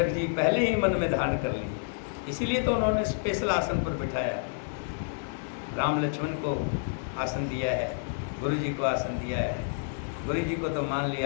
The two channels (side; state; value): right; silent; digital silence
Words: जी पहले ही मन में धारण कर लिए। इसीलिए तो उन्होंने स्पेशल आसन पर बिठाया। राम लक्ष्मण को आसन दिया है, गुरु जी को आसन दिया है। गुरु जी को तो मान